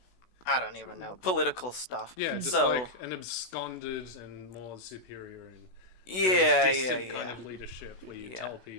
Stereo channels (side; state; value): right; late; 16 ms